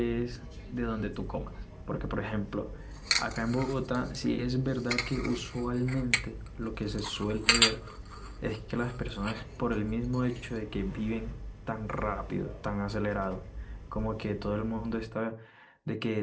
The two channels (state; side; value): identical; both; correlation 1.00